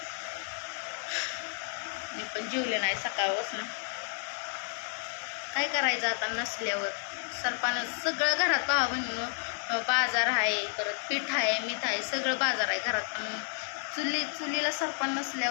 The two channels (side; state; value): right; silent; 57 dB below the other